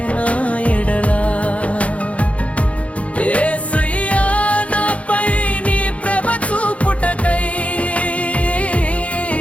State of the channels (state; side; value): late; right; 0.064 ms